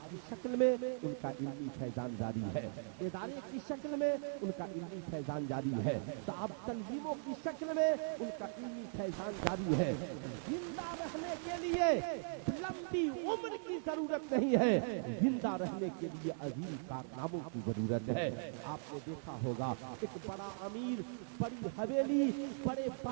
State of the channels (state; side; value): silent; left; 52 dB below the other